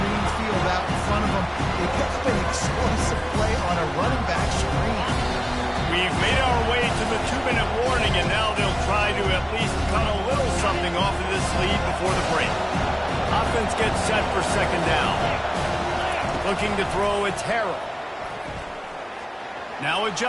field out in front of him. They picked up an explosive play on a running back screen. We've made our way to the 2-minute warning, and now they'll try to at least cut a little something off of this lead before the break. Offense gets set for second down. Looking to throw, it's Harrell. Now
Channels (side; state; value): both; identical; correlation 1.00